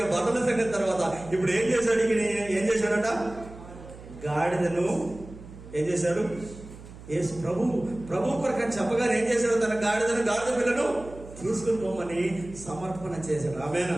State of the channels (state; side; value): noise; right; hum, 17 dB below the sound